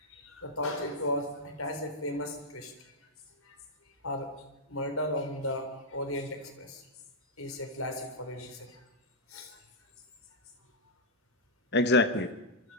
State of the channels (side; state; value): both; normal; correlation -0.06